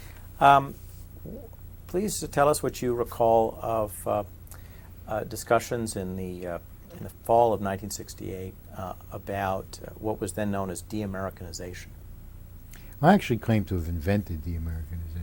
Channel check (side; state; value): both; identical; correlation 1.00